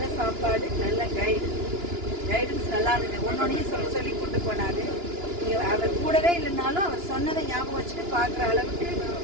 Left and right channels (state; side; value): late; left; 2.9 ms